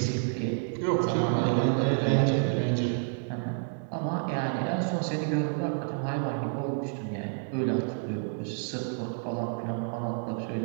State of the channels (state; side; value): silent; left; 58 dB below the other